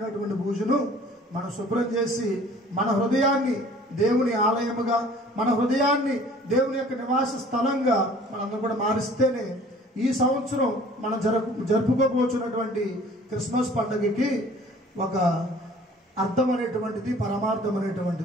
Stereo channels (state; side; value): normal; both; correlation 0.51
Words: పూజలు మనం శుభ్రం చేసి మన హృదయాన్ని దేవుని ఆలయముగా, మన హృదయాన్ని దేవుని యొక్క నివాస స్థలంగా మనందరూ కూడా మారిస్తేనే ఈ సంవత్సరం మనం జరుపుకోబోతున్నటువంటి క్రిస్మస్ పండుగకి ఒక అర్థం అనేటువంటిది, పరమార్థం